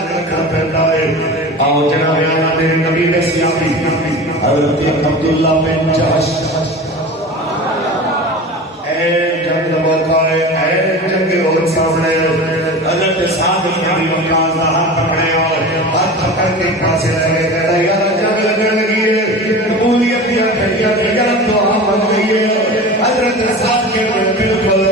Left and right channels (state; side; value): normal; both; correlation 0.33